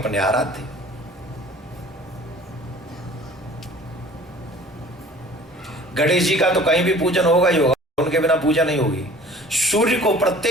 आराध्य। गणेश जी का तो कहीं भी पूजन होगा ही होगा, उनके बिना पूजा नहीं होगी। सूर्य को,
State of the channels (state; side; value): normal; both; correlation 0.48